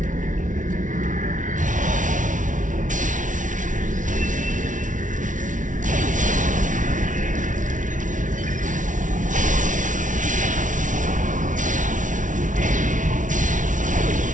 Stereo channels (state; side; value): late; left; 0.37 ms